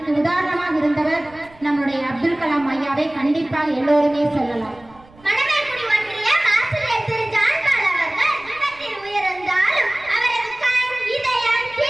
உதாரணமாக இருந்தவர் நம்முடைய அப்துல் கலாம் ஐயாவை கண்டிப்பாக எல்லோருமே சொல்லலாம்.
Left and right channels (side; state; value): right; noise; rumble, 26 dB below the sound